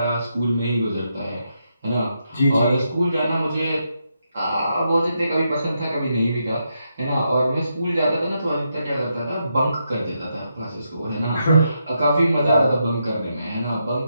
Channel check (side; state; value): both; inverted; correlation -0.82